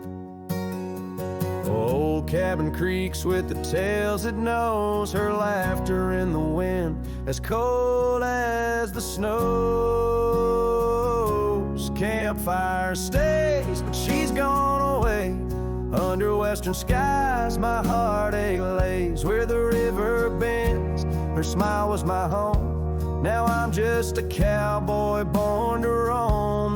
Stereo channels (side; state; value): both; identical; correlation 1.00